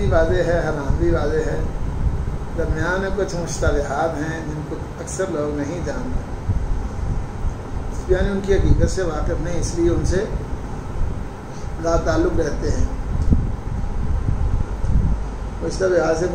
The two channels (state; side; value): identical; both; correlation 1.00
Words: واضح ہے، حرام بھی واضح ہے، درمیان میں کچھ مشتبہات ہیں جن کو اکثر لوگ نہیں جانتے، یعنی ان کی حقیقت سے واقف نہیں، اس لیے ان سے لا تعلق رہتے ہیں۔ مشتبہات سے